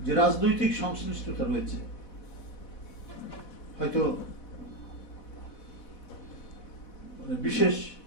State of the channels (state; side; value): late; right; 4.1 ms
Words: যে রাজনৈতিক সংশ্লিষ্টতা রয়েছে। হয়তো বিশেষ